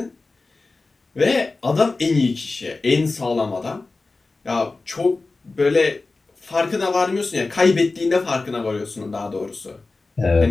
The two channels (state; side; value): quieter; right; 3.6 dB